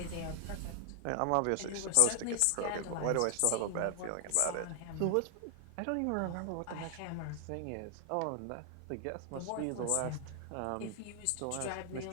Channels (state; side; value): different; both; correlation 0.00